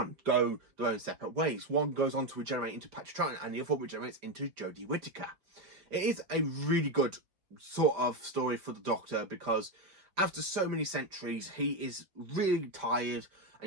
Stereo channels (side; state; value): left; late; 5.0 ms